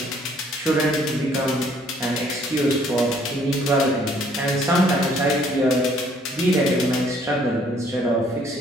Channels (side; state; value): both; normal; correlation 0.62